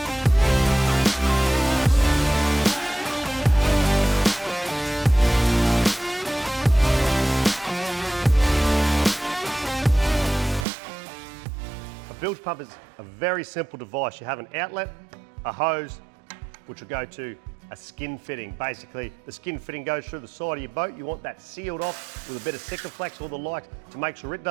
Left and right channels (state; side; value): drops out; left; at 10.7 s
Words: A bilge pump is a very simple device. You have an outlet, a hose, which will go to a skin fitting. Basically, the skin fitting goes through the side of your boat. You want that sealed off with a bit of Sikaflex or the like to make sure it